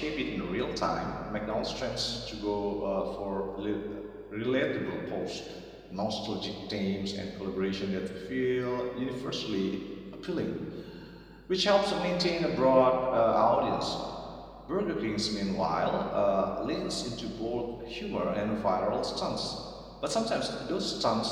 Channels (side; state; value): both; identical; correlation 1.00